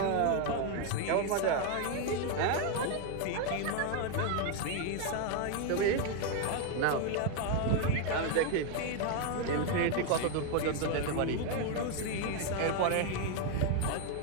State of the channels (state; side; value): different; both; correlation 0.01